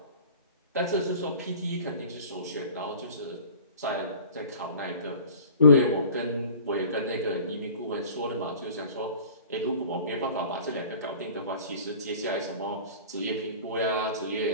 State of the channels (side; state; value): both; inverted; correlation -0.44